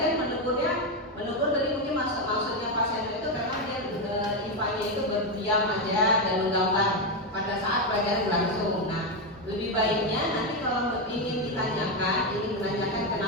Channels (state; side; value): normal; both; correlation 0.08